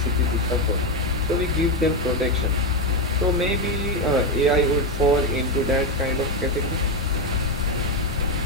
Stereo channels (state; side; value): normal; both; correlation 0.09